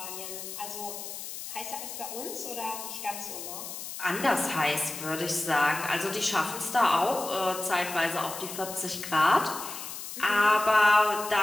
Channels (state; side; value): noise; left; hiss, 9 dB below the sound